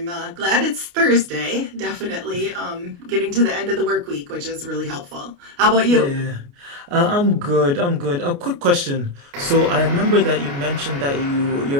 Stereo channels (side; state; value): left; late; 29 ms